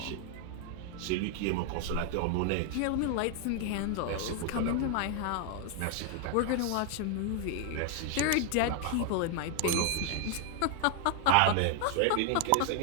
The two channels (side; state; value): both; different; correlation 0.00